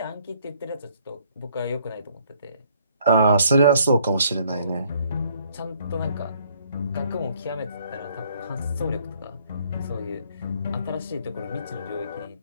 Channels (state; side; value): inverted; both; correlation -0.65